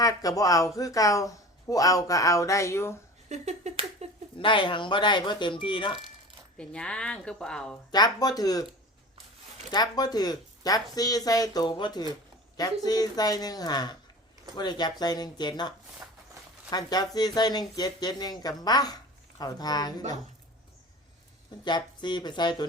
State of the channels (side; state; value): both; normal; correlation 0.37